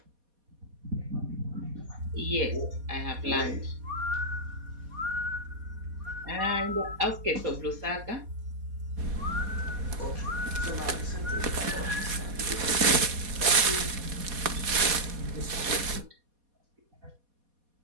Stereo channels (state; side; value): late; left; 4.2 ms